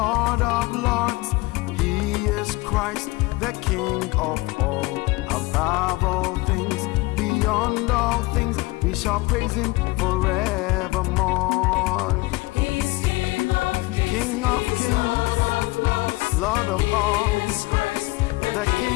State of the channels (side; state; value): right; quieter; 22.6 dB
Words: of lords. He is Christ, the King of all. Above all things, beyond all things, we shall praise Him forevermore. He's King of kings, Lord of all, the